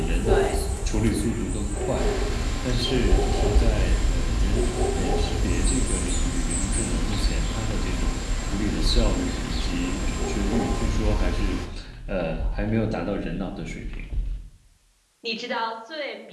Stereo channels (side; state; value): both; identical; correlation 1.00